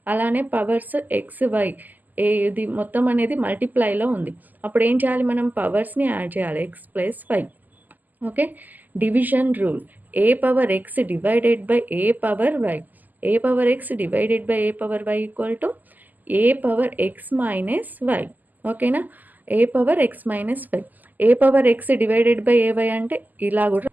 అలానే పవర్స్ ఎక్స్ వై ఇది మొత్తం అనేది మల్టిప్లైలో ఉంది. అప్పుడు ఏం చేయాలి? మనం పవర్స్ని యాడ్ చేయాలి, X plus Y. Okay, division rule: A power X divided by A power Y. A power X divided by A power Y equal to A power X minus Y. ఓకేనా, A power X minus Y. A power X divided by A Y అంటే ఇలా కూడా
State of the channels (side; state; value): left; late; 0.084 ms